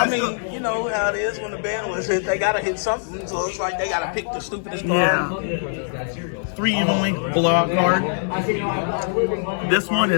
mean, you know how it is when the band was hit, they gotta hit something, so it's like they gotta pick the stupidest card. Yeah. 3 Evenly Blowout card. This one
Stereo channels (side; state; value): right; silent; digital silence